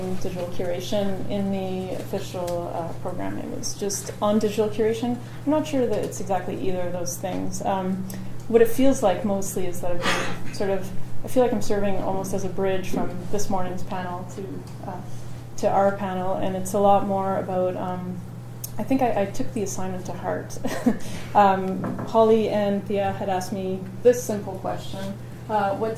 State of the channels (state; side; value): identical; both; correlation 1.00